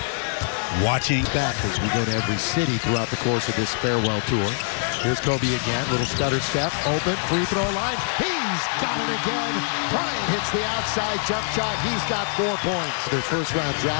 watching. Back as we go to every city throughout the course of this farewell tour. Here's Kobe again, little stutter step, open, free throw line. He's got it again. Bryant hits the outside jump shot. He's got 4 points. Their first-round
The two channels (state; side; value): silent; right; digital silence